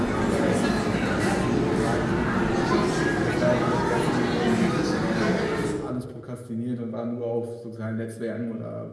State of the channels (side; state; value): both; identical; correlation 1.00